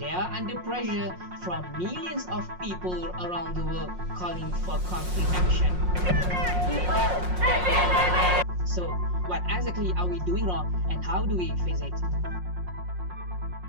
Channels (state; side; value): late; left; 5.5 ms